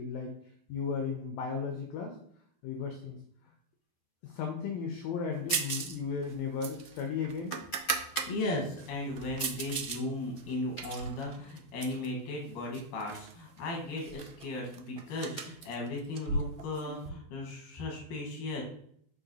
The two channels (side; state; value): right; late; 12 ms